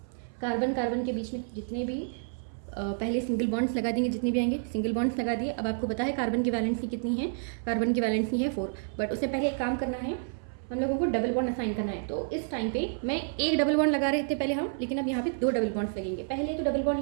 कार्बन के बीच में जितने भी पहले सिंगल बॉन्ड्स लगा देंगे, जितने भी आएंगे सिंगल बॉन्ड्स लगा दिए। अब आपको पता है कार्बन की वैलेंसी कितनी है, कार्बन की वैलेंसी है 4, बट उससे पहले एक काम करना है, हम लोगों को डबल बॉन्ड असाइन करना है। तो इस टाइम पे मैं एक डबल बॉन्ड लगा रहे थे पहले हम, लेकिन अब यहाँ पे 2 डबल बॉन्ड्स लगेंगे। पहले तो डबल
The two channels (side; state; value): left; silent; 58 dB below the other